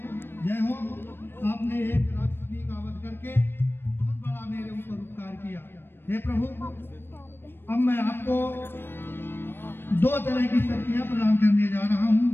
जय हो। आपने एक राक्षसी का वध करके बहुत बड़ा मेरे ऊपर उपकार किया। हे प्रभु, अब मैं आपको दो तरह की शक्तियां प्रदान करने जा रहा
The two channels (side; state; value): right; late; 0.10 ms